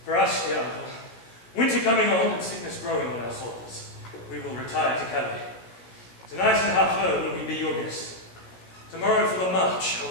For us, dear uncle, winter coming on and sickness growing on our souls, we will retire to Calais. Tonight at half-hour will we be your guests. Tomorrow for the march shall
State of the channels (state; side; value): late; right; 17 ms